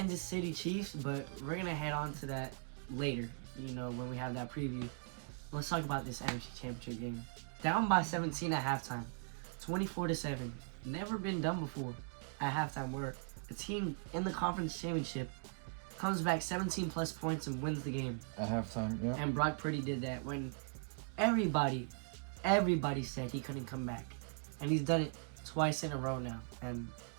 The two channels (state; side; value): silent; left; 51 dB below the other